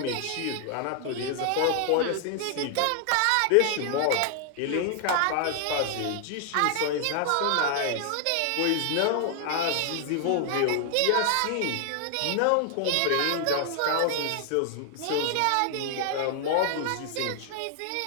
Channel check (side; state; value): both; different; correlation 0.00